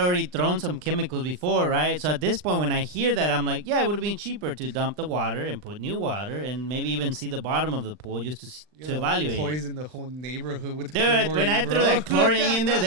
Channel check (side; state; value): left; late; 39 ms